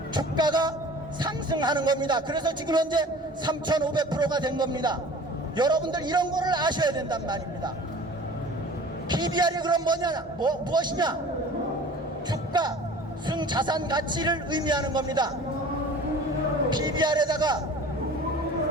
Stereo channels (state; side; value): normal; both; correlation 0.44